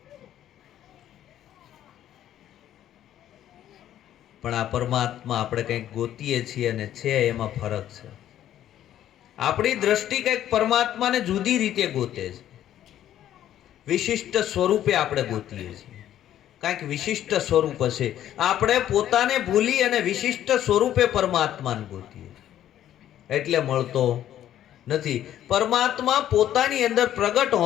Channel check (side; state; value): right; quieter; 11.6 dB